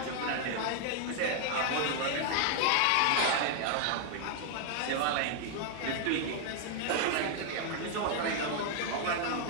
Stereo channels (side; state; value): both; different; correlation 0.00